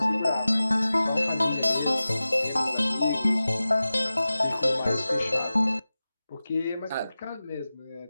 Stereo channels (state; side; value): inverted; both; correlation -0.96